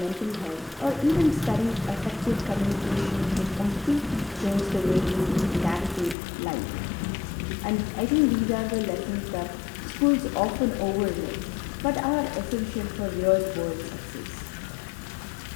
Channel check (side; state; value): right; drops out; at 6.2 s